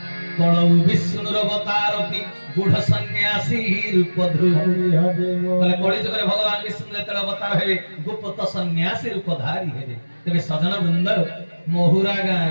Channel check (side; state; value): both; inverted; correlation -1.00